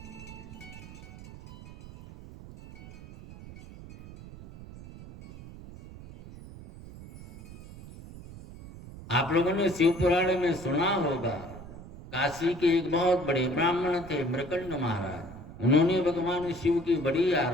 आप लोगों ने शिव पुराण में सुना होगा, काशी के एक बहुत बड़े ब्राह्मण थे मृकंड महाराज, उन्होंने भगवान शिव की बड़ी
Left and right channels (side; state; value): right; noise; rumble, 16 dB below the sound